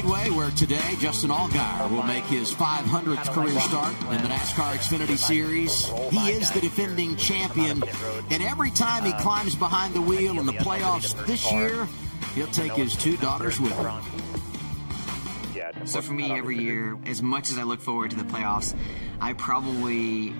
where today Justin Allgaier will make his 500th career start in the NASCAR Xfinity Series. He is the defending champion, and every time he climbs behind the wheel in the playoffs this year, he'll take his two daughters with him. So for me, every year, as much as I look forward to the playoffs, I probably...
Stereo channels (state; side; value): inverted; both; correlation -1.00